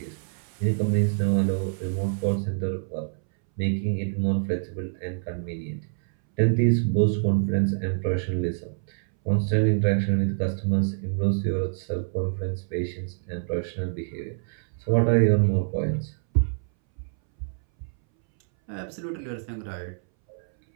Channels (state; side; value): silent; left; 61 dB below the other